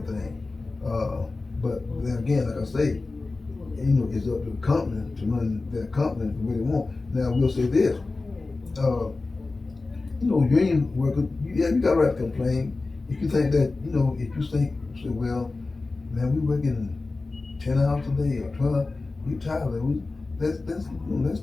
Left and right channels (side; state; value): right; quieter; 3.6 dB